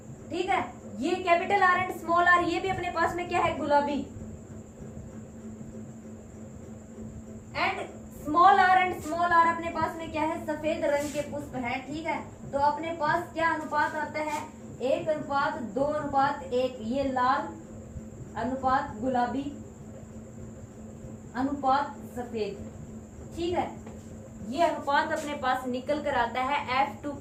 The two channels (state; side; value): identical; both; correlation 1.00